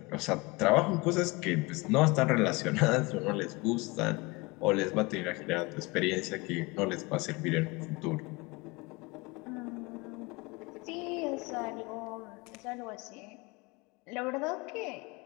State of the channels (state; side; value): quieter; right; 24.3 dB